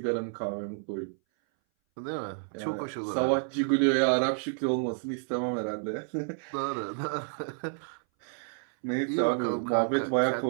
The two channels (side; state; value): left; silent; 58 dB below the other